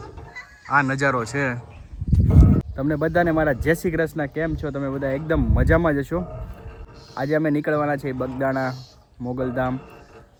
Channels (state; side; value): identical; both; correlation 1.00